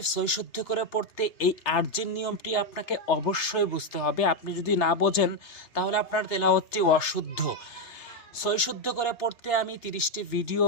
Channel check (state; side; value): late; right; 3.3 ms